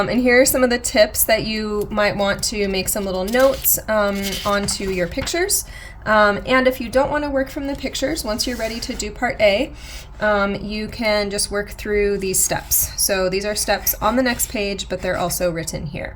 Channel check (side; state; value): both; identical; correlation 1.00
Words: here are some of the tips that you might want to make some little notes onto your pictures. And if you don't want to work from the pictures, once you're ready to do part A, you can just work through these steps. So these are steps on the next page, but they're also written here.